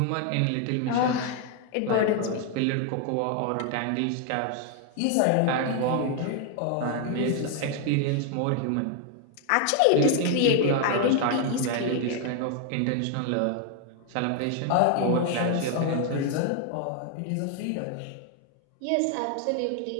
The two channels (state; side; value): different; both; correlation 0.00